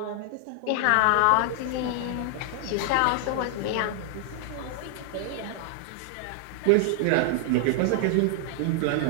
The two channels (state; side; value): different; both; correlation 0.00